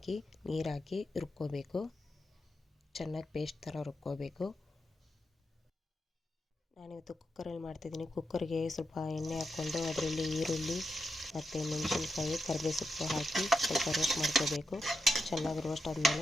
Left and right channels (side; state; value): both; normal; correlation 0.86